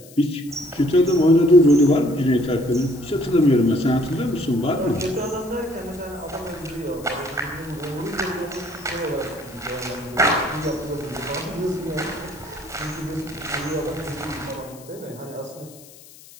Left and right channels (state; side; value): noise; left; hiss, 21 dB below the sound